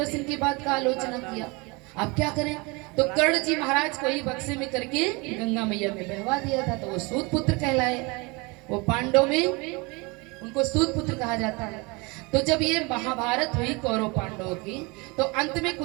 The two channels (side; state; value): left; quieter; 27.0 dB